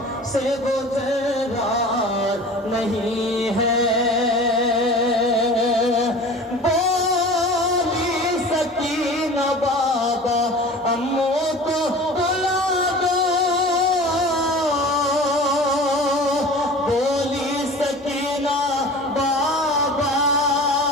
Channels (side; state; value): both; normal; correlation 0.39